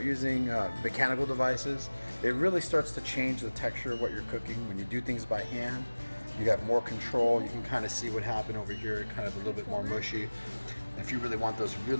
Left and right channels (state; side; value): inverted; both; correlation -1.00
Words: using mechanical devices, it really starts to change the texture of what you're cooking. When you do things by hand, you have more control. You can kind of see what happened over here, kind of a little bit more mushy. If you really want those